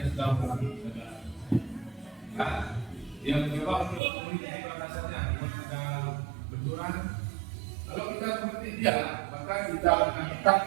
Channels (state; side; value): drops out; left; at 4.0 s